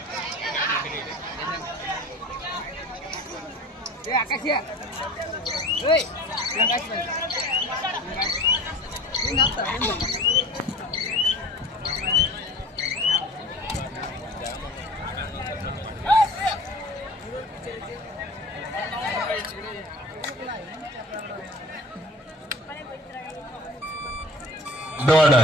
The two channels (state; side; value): normal; both; correlation 0.42